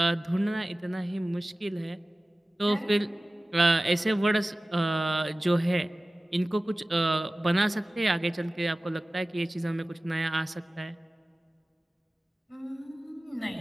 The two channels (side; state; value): both; normal; correlation 0.97